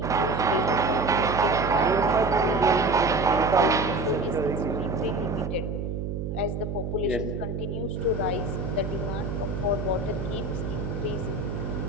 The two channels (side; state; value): right; noise; hum, 4 dB below the sound